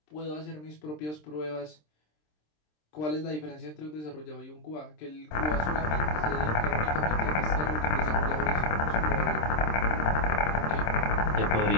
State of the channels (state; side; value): late; right; 26 ms